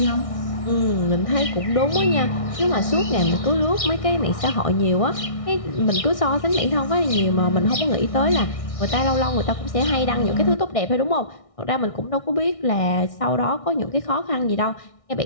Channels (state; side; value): late; right; 1.6 ms